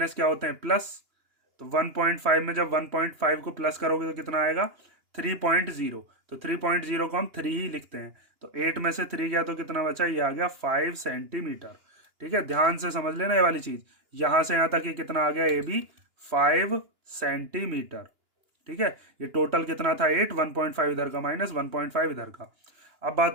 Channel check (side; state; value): left; late; 2.9 ms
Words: क्या होते हैं प्लस। तो 1.5 में जब 1.5 को प्लस करोगे तो कितना आएगा 3.0। तो 3.0 को हम 3 ही लिखते हैं। तो 8 में से 3 गया तो कितना बचा, ये आ गया 5 सेंटीमीटर। ठीक है, ध्यान से समझ लेना ये वाली चीज। यहां से यहां तक ये कितना आ गया ए बी 5 सेंटीमीटर। ठीक है, ये टोटल कितना था 8, 1.5 इधर का माइनस 1.5 इधर का। अब